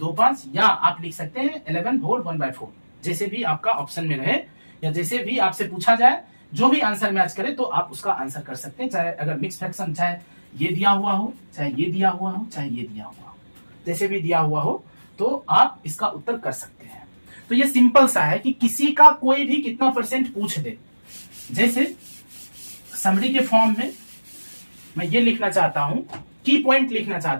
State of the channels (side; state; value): both; inverted; correlation -1.00